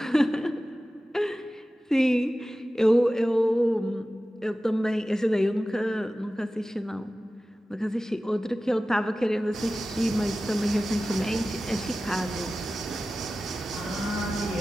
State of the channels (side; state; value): both; normal; correlation 0.95